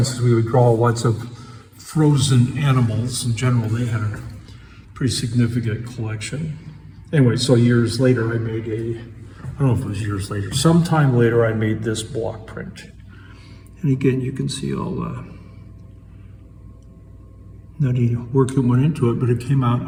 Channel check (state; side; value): identical; both; correlation 1.00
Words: we would draw lots of frozen animals. In general, they had a pretty significant collection. Anyway, so years later, I made I don't know if it was years later, sometime later, I made this block print. And again, you can see all the nutty work that went into it, but it came out,